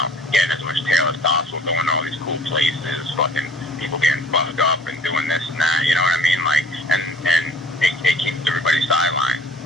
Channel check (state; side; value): normal; both; correlation 0.52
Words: getting as much tail as possible, going to all these cool places, fucking people getting fucked up and doing this and that, you know what I mean? Like, and it keeps everybody sidelined.